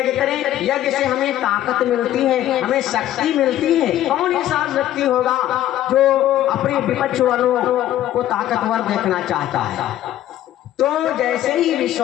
करें। यज्ञ से हमें ताकत मिलती है, हमें शक्ति मिलती है। कौन ऐसा व्यक्ति होगा जो अपने विपक्ष वालों को ताकतवर देखना चाहता है? तो जैसे ही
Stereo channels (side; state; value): right; quieter; 12.9 dB